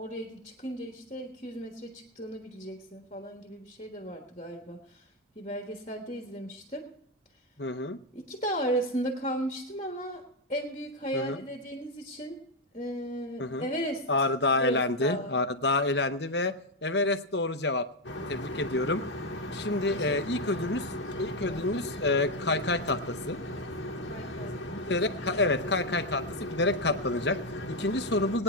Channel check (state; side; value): normal; both; correlation 0.05